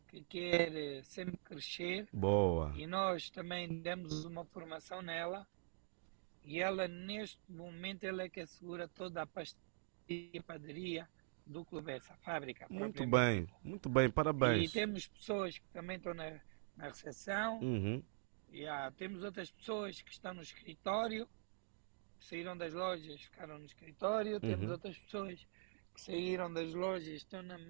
que quer sempre crescer Boa. e nós também demos uma formação nela e ela neste momento ela é que assegura toda a pastelaria e padaria do Clube, essa fábrica propriamente dita. Muito bem, E parabéns. temos pessoas que também estão na recepção, Uhum. e temos outras pessoas que estão no escritório, que saíram das lojas, ficaram no escritório, temos Uhum. outras pessoas que saíram das lojas e estão na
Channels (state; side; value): silent; left; digital silence